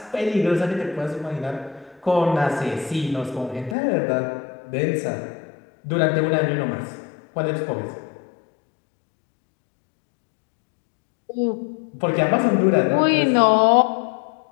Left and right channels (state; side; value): drops out; right; at 3.8 s